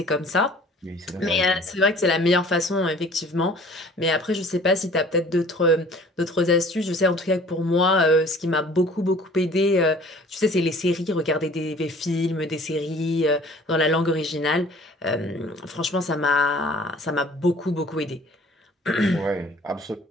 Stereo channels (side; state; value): both; normal; correlation 0.50